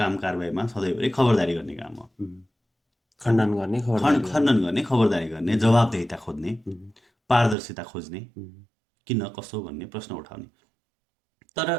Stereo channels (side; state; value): left; drops out; at 7.6 s